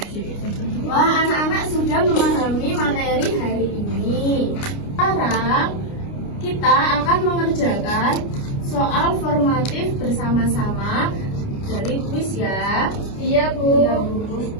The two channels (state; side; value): late; right; 29 ms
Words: 2. Wah, anak-anak sudah memahami materi hari ini. Sekarang kita akan mengerjakan soal formatif bersama-sama dari kuis ya. Iya, Bu.